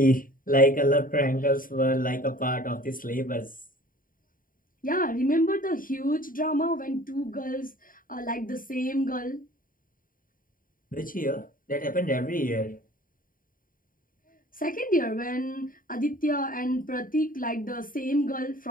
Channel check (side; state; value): right; late; 0.40 ms